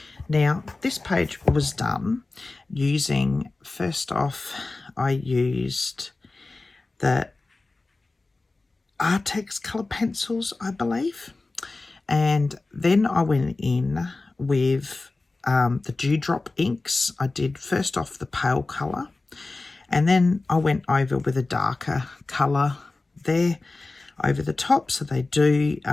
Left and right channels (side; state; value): right; quieter; 3.4 dB